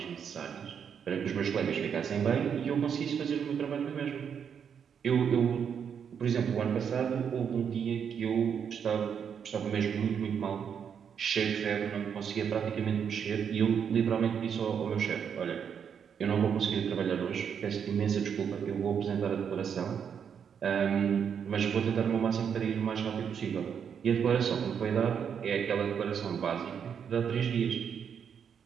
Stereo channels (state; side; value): quieter; left; 7.5 dB